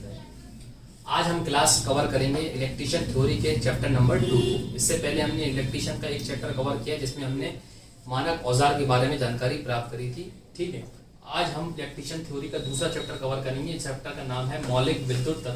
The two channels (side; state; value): both; identical; correlation 1.00